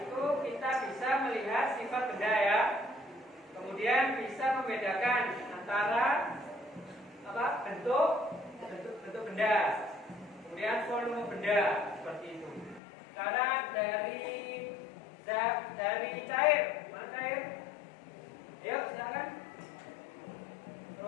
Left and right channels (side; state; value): right; drops out; at 12.8 s